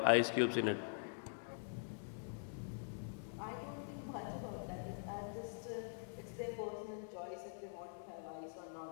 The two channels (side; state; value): right; silent; digital silence